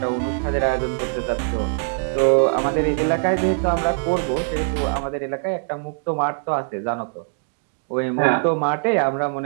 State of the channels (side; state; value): left; silent; digital silence